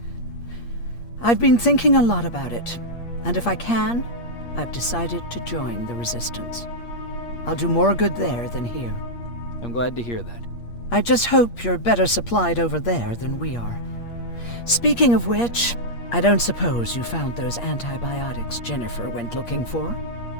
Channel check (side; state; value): right; late; 8.5 ms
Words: I've been thinking a lot about it, and if I can, I've decided to join the Resistance. I'll do more good there than here. I'm glad to hear that. I just hope you're better supplied over there than we are. Speaking of which, I don't suppose you found those antibiotics Jennifer went looking for?